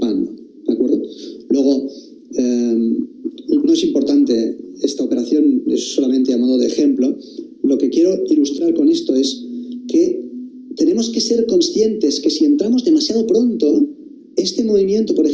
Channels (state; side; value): identical; both; correlation 1.00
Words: ¿de acuerdo? Luego, no es importante esta operación, es solamente a modo de ejemplo. Lo que quiero ilustrar con esto es que tenemos que ser conscientes que si entramos demasiado pronto, este movimiento, por